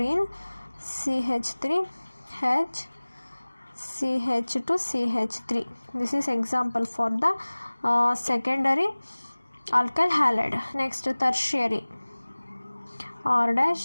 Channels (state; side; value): inverted; both; correlation -1.00